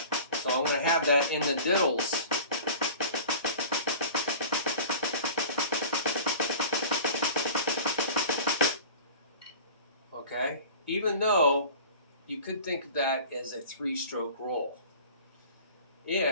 So I'm going to have that in the diddles. Okay, even though you could think of that as a 3-stroke roll.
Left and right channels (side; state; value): both; inverted; correlation -0.40